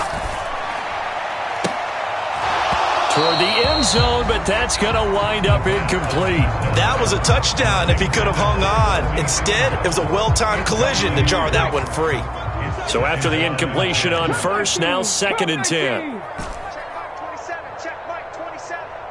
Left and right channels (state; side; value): identical; both; correlation 1.00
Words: Toward the end zone, but that's going to wind up incomplete. That was a touchdown if he could have hung on. Instead, it was a well-timed collision to jar that one free. So after the incompletion on 1st, now 2nd and 10.